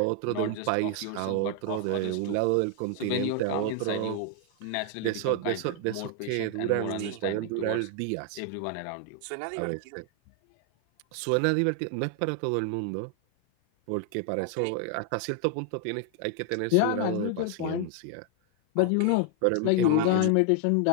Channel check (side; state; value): both; different; correlation 0.00